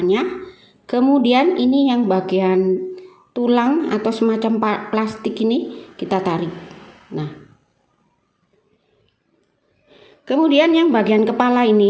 Kemudian ini yang bagian tulang atau semacam plastik ini kita tarik. Nah, kemudian yang bagian kepala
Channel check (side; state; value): both; identical; correlation 1.00